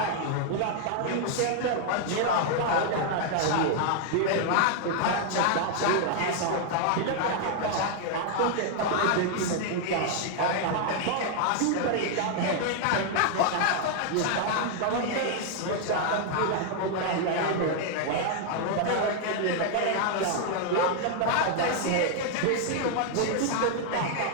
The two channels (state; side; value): different; both; correlation 0.00